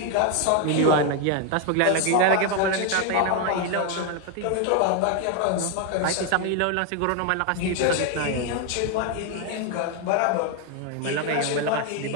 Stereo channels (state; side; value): different; both; correlation 0.01